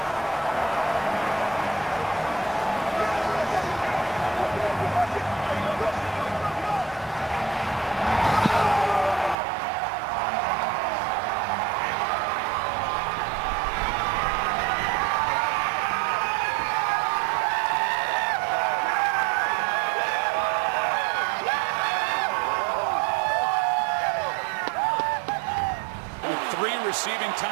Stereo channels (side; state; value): left; drops out; at 9.3 s